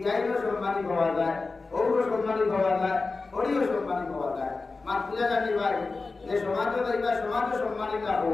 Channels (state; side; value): quieter; right; 3.9 dB